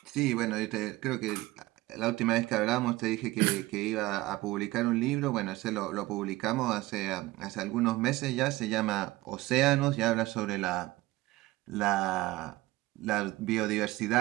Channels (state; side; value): quieter; left; 18.7 dB